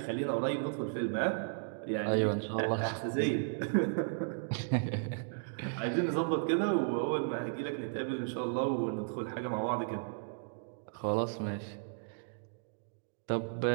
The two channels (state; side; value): silent; left; digital silence